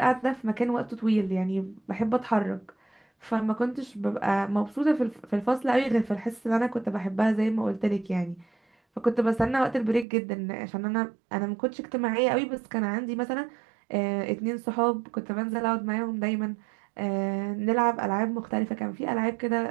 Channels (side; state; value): left; drops out; at 10.1 s